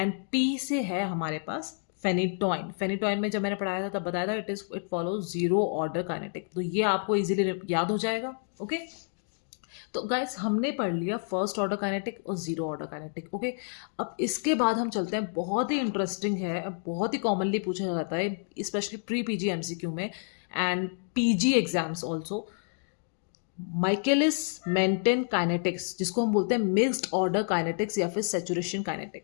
P से है हमारे पास फेनिटॉइन। फेनिटॉइन में जब मैंने पढ़ाया था तब बताया था it follows zero order kinetic, तो ये आपको इजीली याद हो जाएगा। ओके, तो गाइस हमने पढ़ लिया फर्स्ट ऑर्डर काइनेटिक और जीरो ऑर्डर काइनेटिक। ओके, अब इसके बाद हम चलते हैं, बहुत ही इंटरेस्टिंग है, बहुत ही कॉमनली पूछा जाता है स्पेशली प्री पीजी एमसीक्यू में and PG exams also, Michaelis Menten kinetics, जिसको हम बोलते हैं मिक्स्ड ऑर्डर काइनेटिक्स या फिर सैचुरेशन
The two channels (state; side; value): silent; right; 58 dB below the other